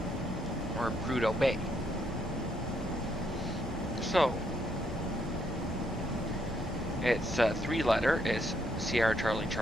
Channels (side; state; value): both; normal; correlation 0.74